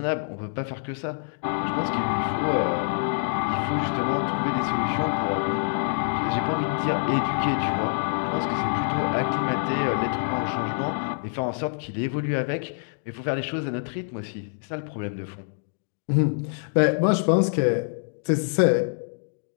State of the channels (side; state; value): right; silent; digital silence